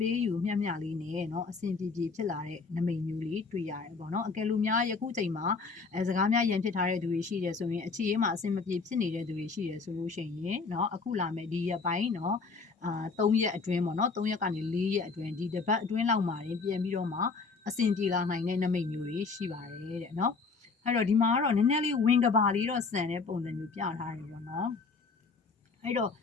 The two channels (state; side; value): quieter; right; 4.5 dB